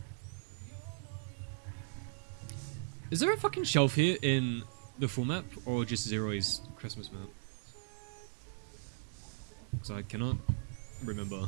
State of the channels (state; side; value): silent; left; digital silence